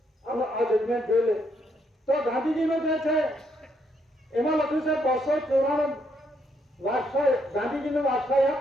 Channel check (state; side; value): normal; both; correlation 0.74